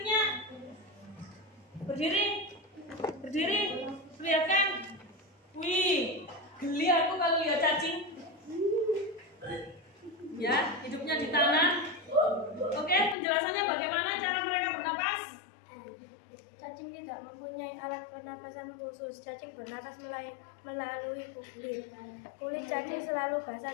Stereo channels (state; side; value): drops out; right; at 13.2 s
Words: Berdiri, perlihatkan. Wih, geli aku kalau lihat cacing. pernapasan khusus. Cacing bernapas melalui kulit. Kulit cacing selalu